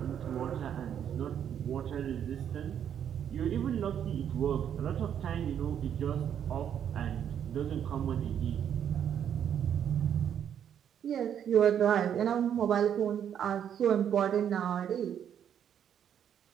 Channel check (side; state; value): left; quieter; 9.1 dB